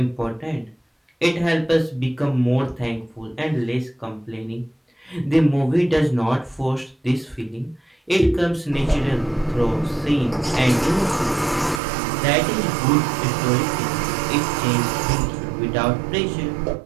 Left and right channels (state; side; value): drops out; left; at 11.8 s